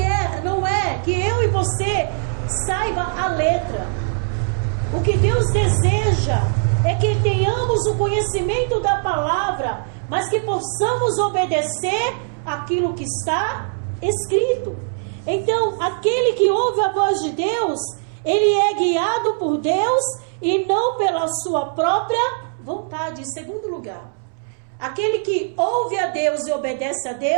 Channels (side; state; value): left; silent; 65 dB below the other